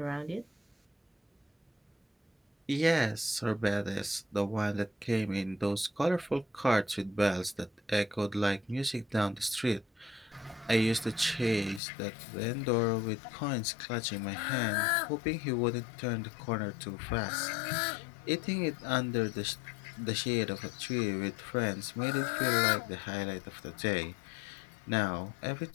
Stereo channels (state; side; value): drops out; right; at 11.8 s